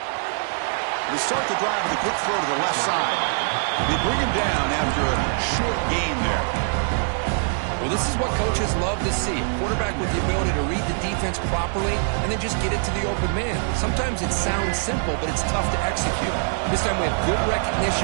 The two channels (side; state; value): left; silent; 63 dB below the other